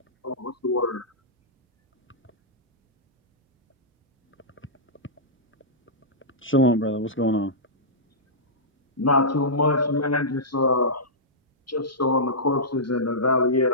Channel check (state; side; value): normal; both; correlation -0.14